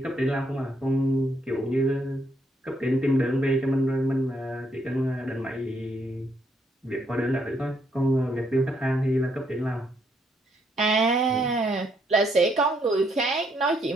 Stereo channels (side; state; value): both; normal; correlation 0.73